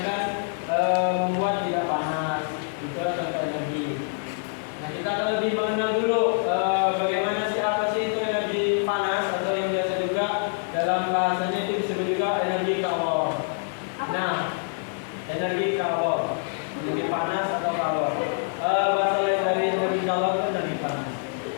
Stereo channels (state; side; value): silent; right; 55 dB below the other